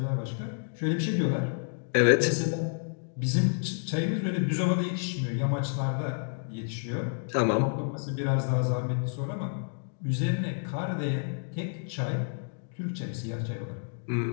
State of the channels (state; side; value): silent; right; digital silence